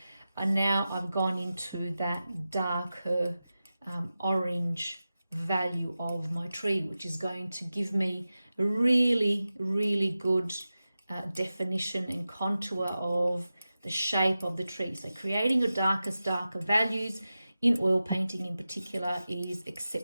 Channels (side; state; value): both; inverted; correlation -0.93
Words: And now I've gone into that darker orange value of my tree, which is going to give me a really, really good definition and contour of the shape of the tree. So creating your darker values in oil painting in particular is